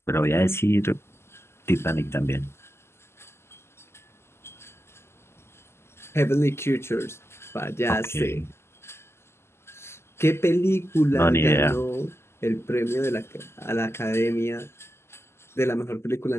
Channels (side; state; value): right; late; 0.12 ms